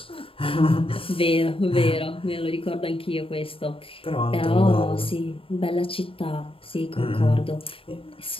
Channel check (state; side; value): late; right; 0.27 ms